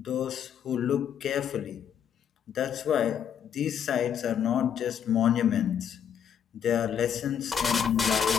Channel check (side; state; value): right; quieter; 8.5 dB